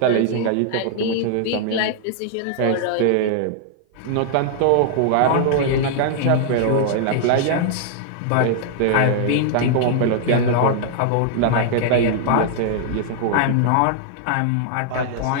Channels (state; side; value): different; both; correlation -0.01